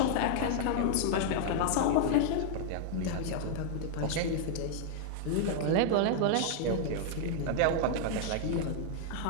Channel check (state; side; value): different; both; correlation -0.01